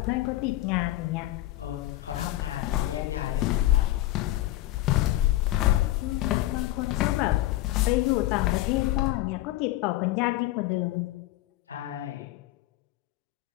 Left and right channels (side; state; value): right; quieter; 15.9 dB